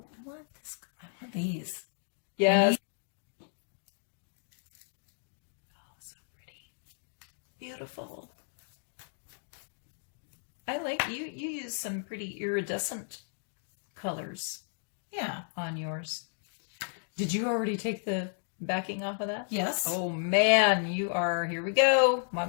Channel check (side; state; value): right; silent; digital silence